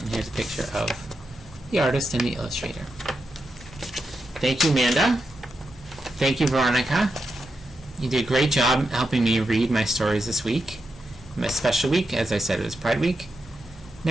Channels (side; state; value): both; normal; correlation 0.87